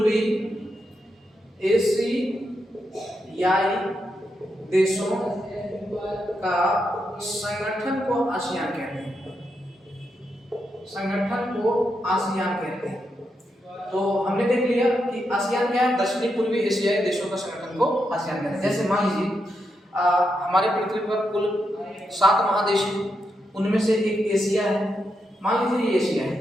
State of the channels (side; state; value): both; normal; correlation 0.84